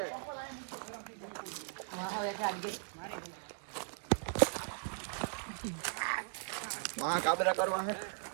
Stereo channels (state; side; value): silent; left; 52 dB below the other